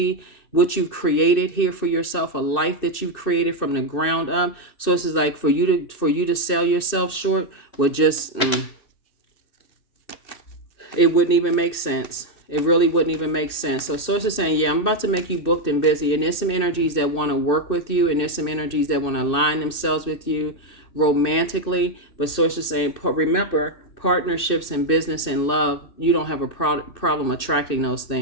what you've created here for yourself, a life that you've created from the ground up. So this is like for you to sell yourself short would just it wouldn't even make sense. It really wouldn't even make sense. So source is saying, yeah, I'm about to make you booked and busy. And there's some energies that want to work with you. And there's some energies that want to align themselves with you romantically. But source is saying, remember, partnerships and business and love, you don't have a problem attracting those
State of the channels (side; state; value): right; late; 2.6 ms